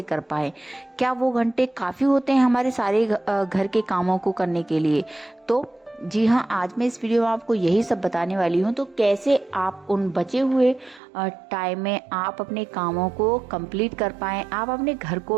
कर पाए? क्या वो घंटे काफ़ी होते हैं हमारे सारे घर के कामों को करने के लिए? तो जी हाँ, आज मैं इस वीडियो में आपको यही सब बताने वाली हूँ। तो कैसे आप उन बचे हुए टाइम में आप अपने कामों को कंप्लीट कर पाएँ, आप अपने घर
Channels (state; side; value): drops out; left; at 11.0 s